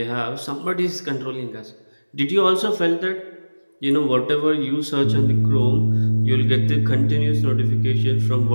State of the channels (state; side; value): inverted; both; correlation -1.00